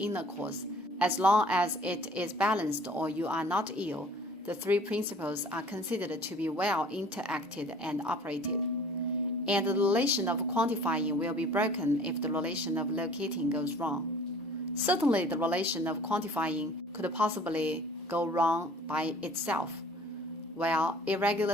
cause. As long as it is balanced or you are not ill, the three principles are considered to be well interacted and operated. And the relation of quantifying will be broken if the relation of locating goes wrong. Certainly, the relation of quantifying could possibly go wrong by itself, while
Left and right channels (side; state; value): both; normal; correlation 0.50